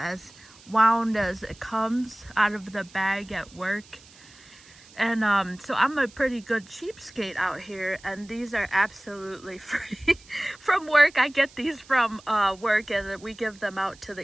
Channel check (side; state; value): right; noise; hiss, 24 dB below the sound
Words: wound as it comes out of the bag at work. And so I'm a pretty good cheapskate out here, and these are absolutely free from work. I get these from work, and we give them out to